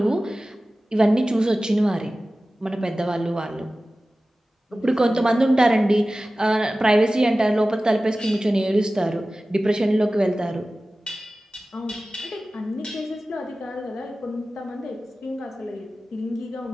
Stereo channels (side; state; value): both; normal; correlation 0.96